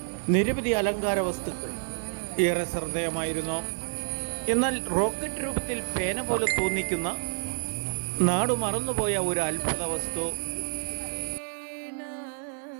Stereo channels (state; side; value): silent; left; digital silence